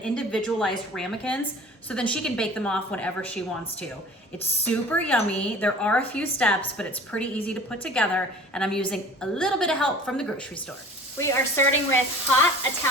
ramekins, so then she can bake them off whenever she wants to. It's super yummy. There are a few steps, but it's pretty easy to put together, and I'm using a little bit of help from the grocery store. We are starting with hot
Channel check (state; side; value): normal; both; correlation 0.44